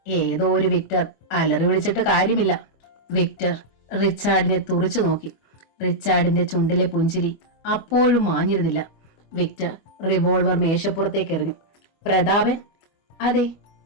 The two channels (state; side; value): late; right; 25 ms